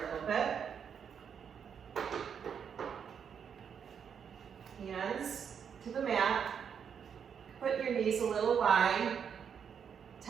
little bit. Hands to the mat. Put your knees a little wide,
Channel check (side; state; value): left; quieter; 7.4 dB